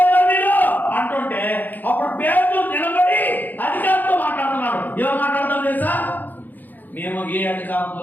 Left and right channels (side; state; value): right; late; 0.086 ms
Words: మీరు అంటుంటే అప్పుడు పేతురు నిలబడి అధికారంతో మాట్లాడుతున్నాడు. ఎవరు మాట్లాడతారు తెలుసా? మేము ఏ అధికారంతో